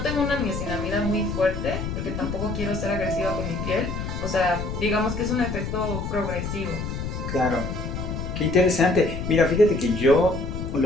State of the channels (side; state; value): left; noise; rumble, 5 dB below the sound